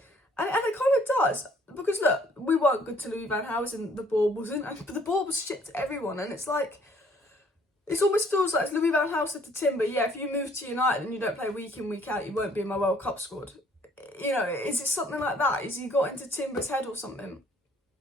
And it kind of does, because look, we weren't good to Louis van Gaal, and the ball wasn't, but the ball was shit to everyone, and it's like, it almost feels like Louis van Gaal said to Timber, yeah, if you move to United and you don't play week in, week out, you won't be in my World Cup squad. You know, is it something like that? Is he got into Timber's head or something?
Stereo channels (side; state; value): both; normal; correlation 0.60